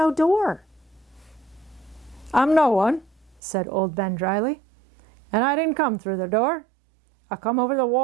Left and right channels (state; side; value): drops out; left; at 3.4 s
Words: door." "I'm no one," said old Ben dryly, "and I didn't come through the door. I come over the